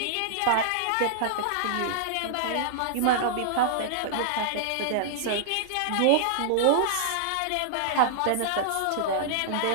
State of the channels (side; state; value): both; different; correlation -0.01